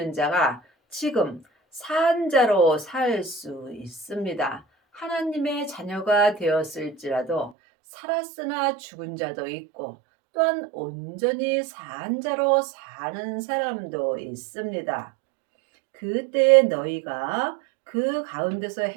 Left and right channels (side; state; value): left; drops out; at 7.5 s